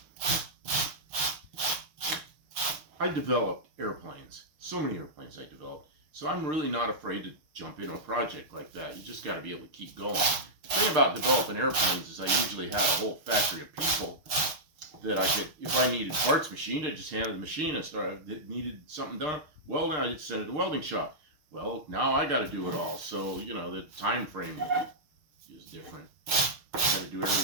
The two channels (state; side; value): late; left; 6.5 ms